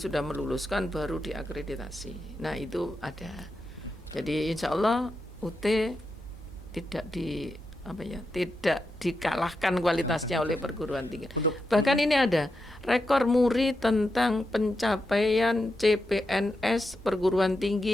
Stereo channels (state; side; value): normal; both; correlation 0.87